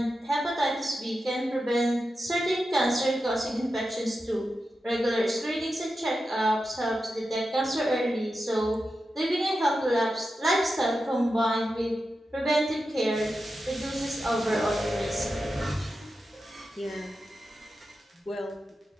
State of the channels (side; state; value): both; normal; correlation 0.90